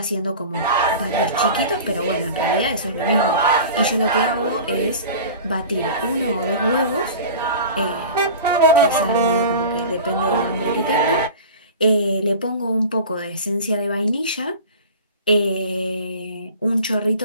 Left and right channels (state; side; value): inverted; both; correlation -0.37